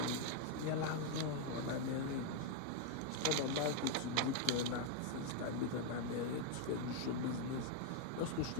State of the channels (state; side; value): different; both; correlation 0.00